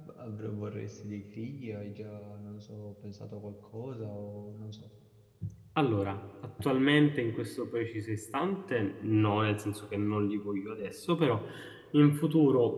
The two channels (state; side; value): identical; both; correlation 1.00